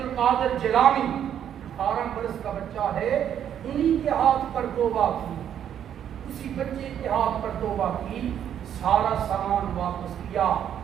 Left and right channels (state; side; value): quieter; left; 9.6 dB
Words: القادر جیلانی 18 برس کا بچہ ہے، انہی کے ہاتھ پر توبہ کی، اسی بچے کے ہاتھ پر توبہ کی، سارا سامان واپس کیا.